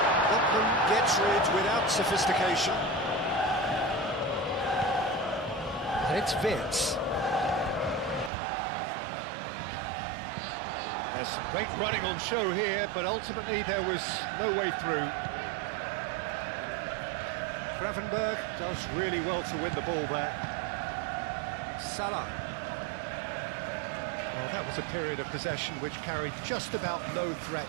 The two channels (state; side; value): drops out; left; at 8.3 s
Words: Botman gets rid without sophistication. And it's Vitz. There's some great running on show here, but ultimately there was no way through. Gravenberg does really well to win the ball there. Salah. Well, that was a period of possession which carried just about no